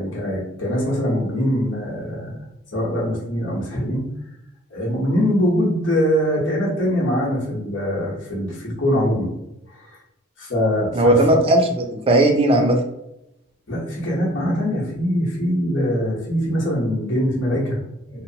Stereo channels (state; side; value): normal; both; correlation 0.51